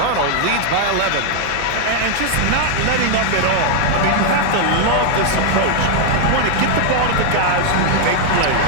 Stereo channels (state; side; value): different; both; correlation 0.00